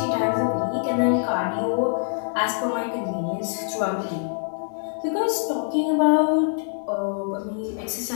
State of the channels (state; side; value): silent; right; digital silence